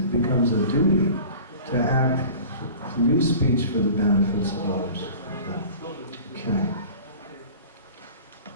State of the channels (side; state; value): both; inverted; correlation -0.41